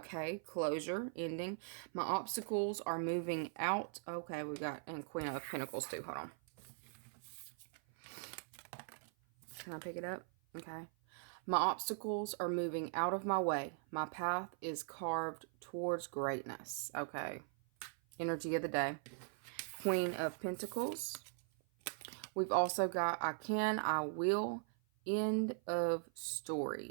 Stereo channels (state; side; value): silent; left; 51 dB below the other